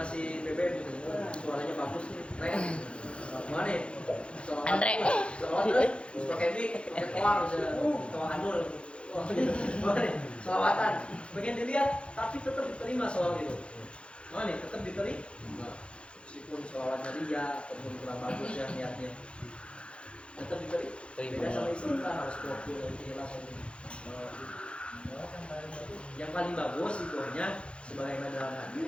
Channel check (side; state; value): right; late; 0.058 ms